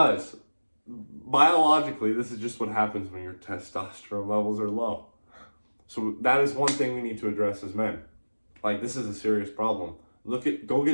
biologically, this is just what happens when your testosterone levels are low. So that is one thing we need to address as men. Like, this is a serious problem. Go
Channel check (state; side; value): inverted; both; correlation -1.00